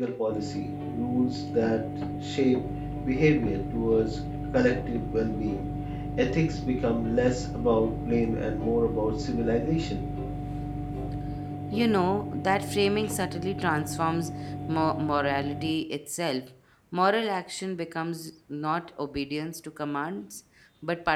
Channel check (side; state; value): both; identical; correlation 1.00